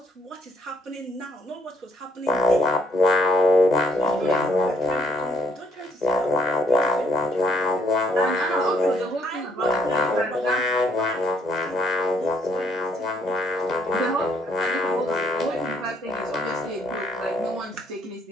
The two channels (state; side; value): normal; both; correlation 0.68